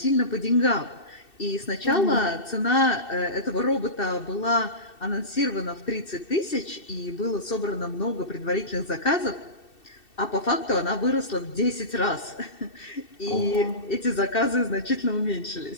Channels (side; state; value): right; late; 2.7 ms